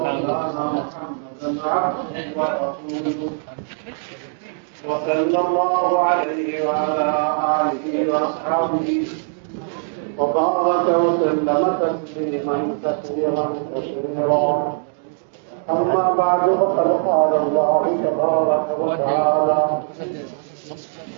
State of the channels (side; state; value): left; silent; digital silence